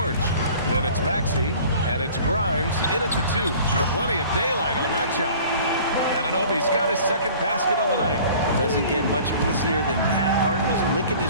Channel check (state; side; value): inverted; both; correlation -0.47